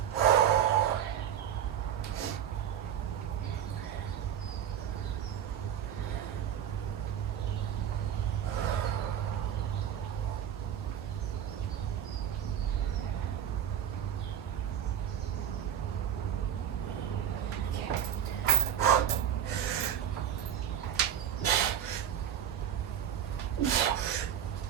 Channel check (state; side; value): quieter; left; 9.7 dB